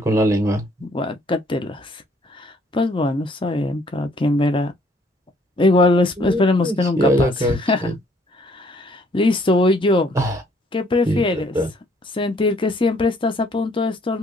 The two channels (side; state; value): both; normal; correlation 0.63